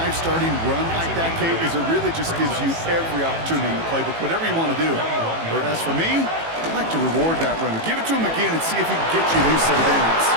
starting run like that, Kate, is it really just gives you every opportunity in the playbook, whatever you want to do. Or as for me, I'd like to reward that runner. Give it to him again and see if he can get you a new set of downs.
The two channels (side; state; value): left; late; 18 ms